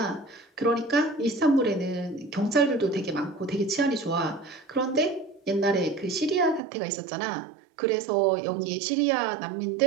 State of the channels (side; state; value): left; drops out; at 6.6 s